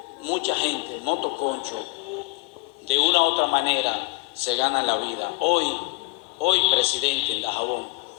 mucha gente, motoconcho, de una u otra manera se gana la vida. Hoy, presidente, en Dajabón,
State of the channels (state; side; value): quieter; right; 24.2 dB